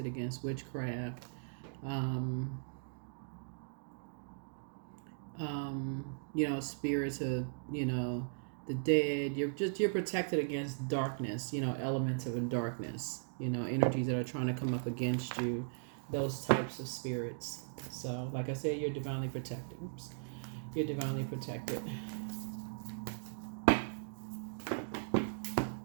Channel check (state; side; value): silent; left; digital silence